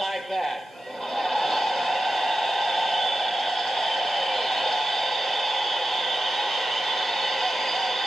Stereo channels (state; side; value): normal; both; correlation 0.92